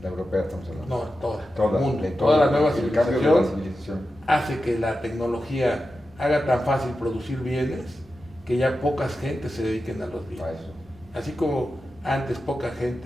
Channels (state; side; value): normal; both; correlation 0.91